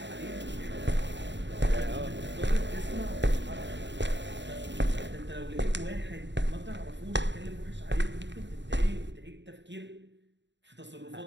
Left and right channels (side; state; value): left; late; 0.52 ms